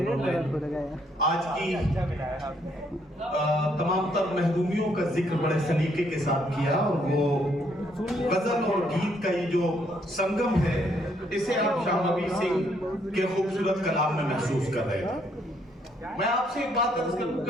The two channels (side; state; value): both; normal; correlation 0.70